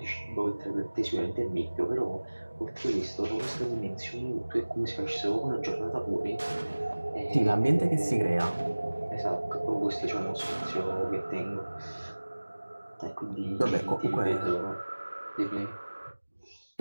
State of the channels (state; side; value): inverted; both; correlation -1.00